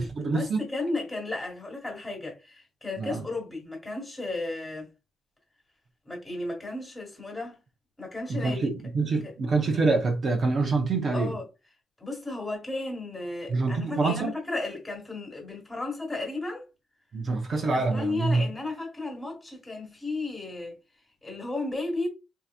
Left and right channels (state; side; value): normal; both; correlation 0.82